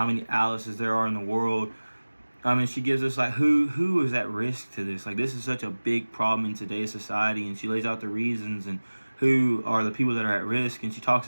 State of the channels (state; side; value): inverted; both; correlation -1.00